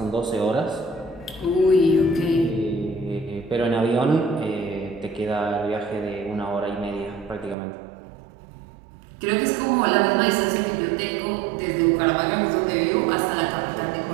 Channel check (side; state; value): left; drops out; at 7.6 s